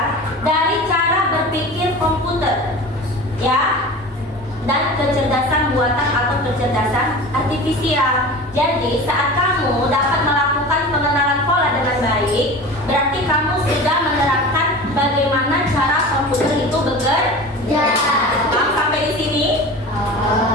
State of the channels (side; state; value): both; normal; correlation 0.34